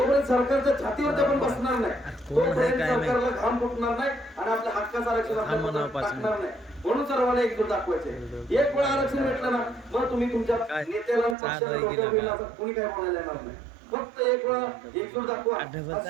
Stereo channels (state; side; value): drops out; left; at 11.4 s